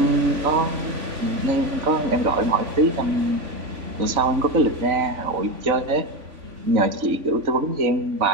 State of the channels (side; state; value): left; late; 3.5 ms